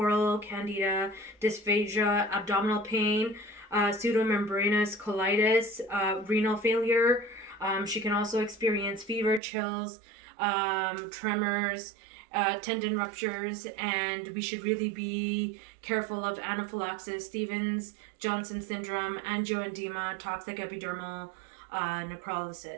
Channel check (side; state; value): left; drops out; at 9.4 s